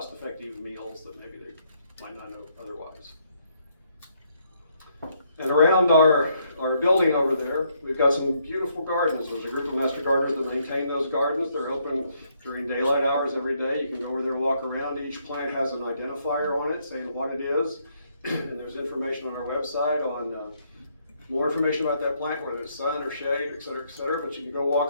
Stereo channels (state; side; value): inverted; both; correlation -0.72